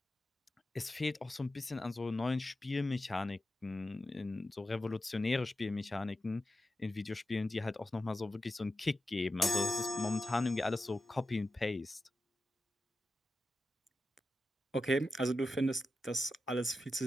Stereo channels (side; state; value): both; normal; correlation 0.92